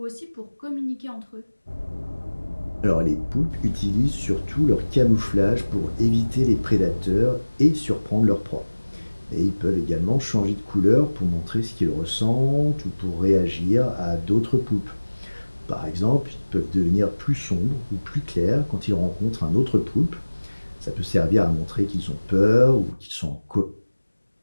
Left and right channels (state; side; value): inverted; both; correlation -1.00